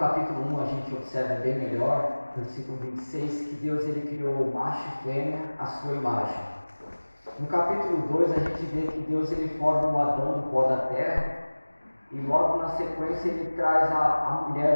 1 a gente observa bem melhor, versículo 26, que Deus ele criou macho e fêmea à sua imagem. No capítulo 2 a gente vê que Deus ele forma o Adão do pó da terra e logo na sequência ele traz a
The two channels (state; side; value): inverted; both; correlation -1.00